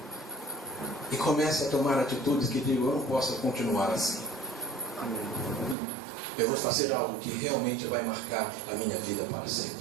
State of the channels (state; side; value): drops out; left; at 5.8 s